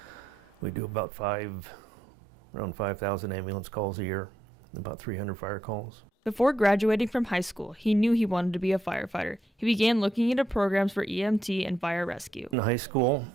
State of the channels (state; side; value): normal; both; correlation 0.80